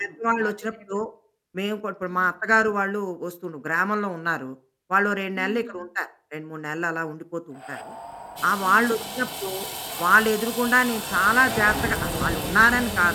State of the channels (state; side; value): identical; both; correlation 1.00